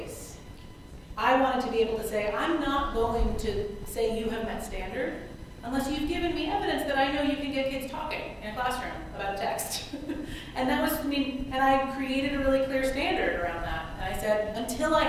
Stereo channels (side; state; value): both; identical; correlation 1.00